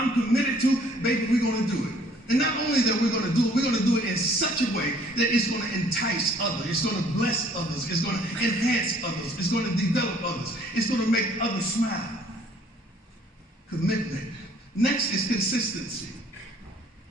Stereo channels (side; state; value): both; normal; correlation 0.58